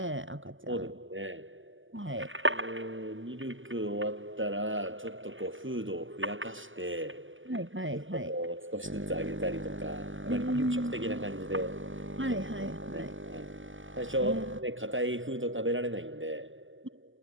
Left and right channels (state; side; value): late; left; 0.57 ms